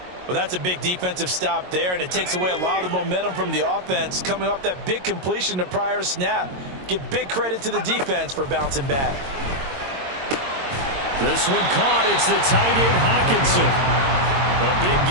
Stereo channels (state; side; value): late; left; 22 ms